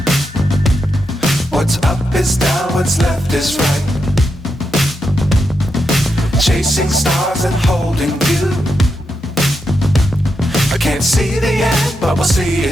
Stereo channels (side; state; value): both; normal; correlation 0.85